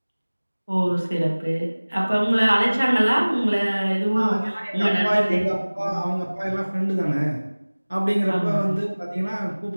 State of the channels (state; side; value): inverted; both; correlation -1.00